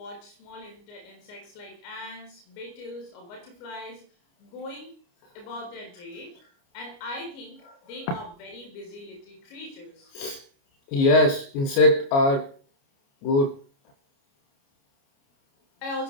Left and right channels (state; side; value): late; right; 29 ms